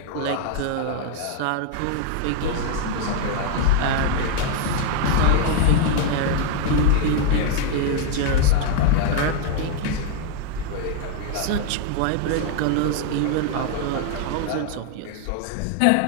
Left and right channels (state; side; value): different; both; correlation 0.00